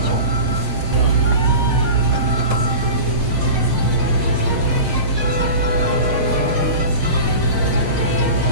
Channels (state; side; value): late; left; 6.4 ms